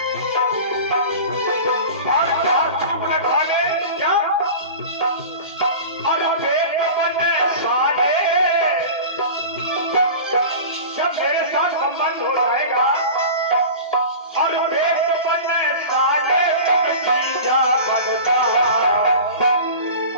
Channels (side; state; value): both; inverted; correlation -0.35